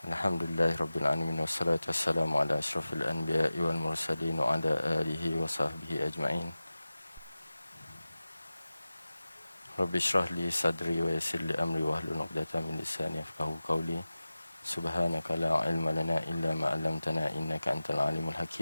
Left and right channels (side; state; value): both; inverted; correlation -0.96